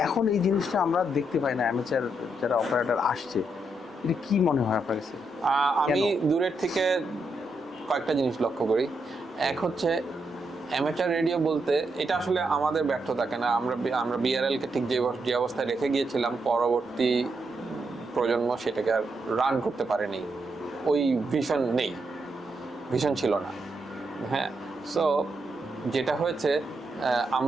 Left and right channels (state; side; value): normal; both; correlation 0.81